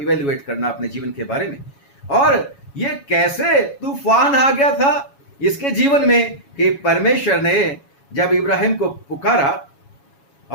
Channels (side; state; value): right; late; 7.2 ms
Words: इवेल्युएट करना अपने जीवन के बारे में। और ये कैसे तूफान आ गया था इसके जीवन में कि परमेश्वर ने जब इब्राहिम को पुकारा,